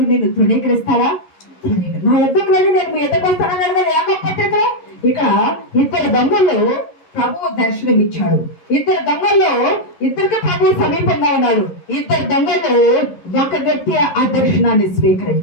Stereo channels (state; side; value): late; right; 11 ms